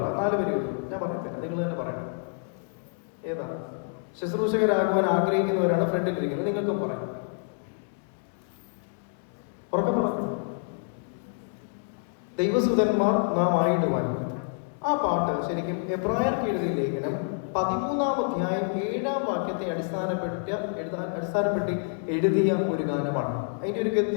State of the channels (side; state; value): right; silent; 60 dB below the other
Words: 4 വരിയുള്ളൂ. ഞാൻ പറയത്തില്ല, നിങ്ങൾ തന്നെ പറയണം. ഏതാ? ശുശ്രൂഷകരാകുവാൻ ആഗ്രഹിക്കുന്നവരാണ് ഫ്രണ്ടിലിരിക്കുന്നത്. നിങ്ങൾക്കും പറയാം. ഉറക്കം പറഞ്ഞു. ദൈവസുതന്മാർ നാം ആയിടുവാൻ. ആ പാട്ട് ശരിക്കും എബ്രായർക്ക് എഴുതിയ ലേഖനം 13-ാം അധ്യായം 7-ാം വാക്യത്തെ അടിസ്ഥാനപ്പെടുത്തി എഴുതിയ ഒരു ഗാനമാണ്. അതിന്റെ ഒരു